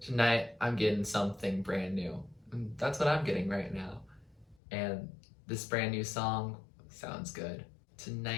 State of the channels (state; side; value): drops out; right; at 4.5 s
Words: tonight I'm getting something brand new. And that's what I'm getting right now. And this brand new song sounds good.